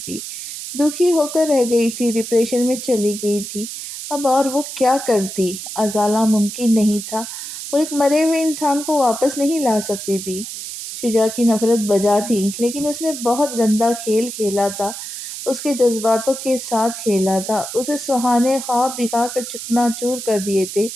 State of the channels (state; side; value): noise; right; hiss, 8 dB below the sound